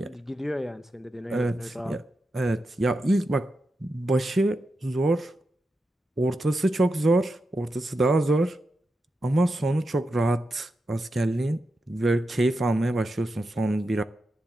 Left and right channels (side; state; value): both; normal; correlation 0.88